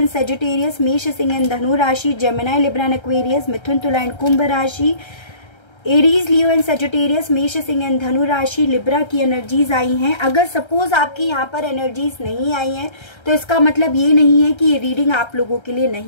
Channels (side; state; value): right; late; 1.3 ms